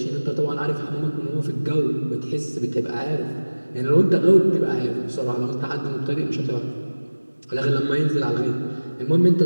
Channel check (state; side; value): inverted; both; correlation -1.00